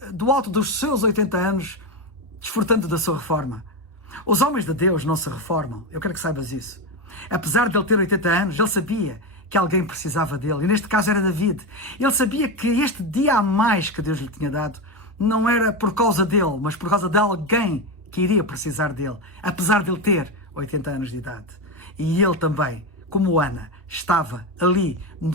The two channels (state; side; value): normal; both; correlation 0.14